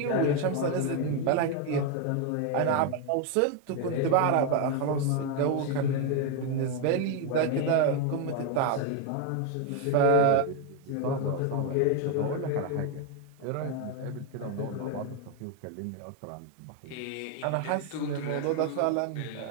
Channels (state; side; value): different; both; correlation 0.01